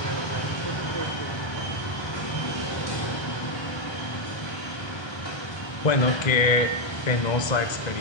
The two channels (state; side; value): late; right; 1.3 ms